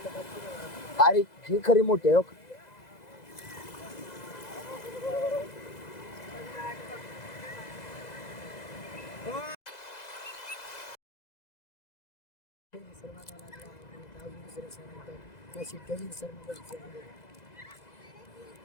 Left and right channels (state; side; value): late; right; 2.0 ms